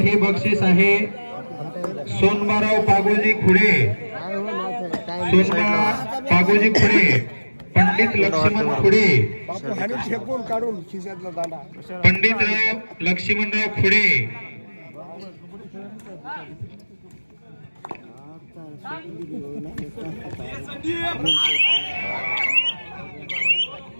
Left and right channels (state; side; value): inverted; both; correlation -1.00